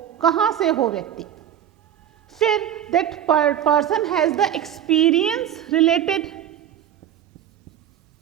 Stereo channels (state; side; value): quieter; left; 10.3 dB